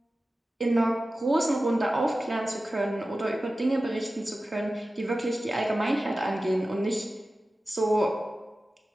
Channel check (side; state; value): both; normal; correlation 0.95